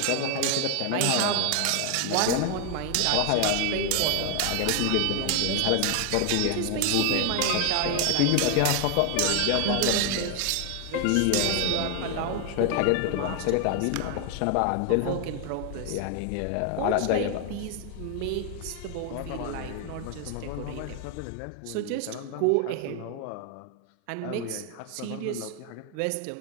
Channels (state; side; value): different; both; correlation 0.01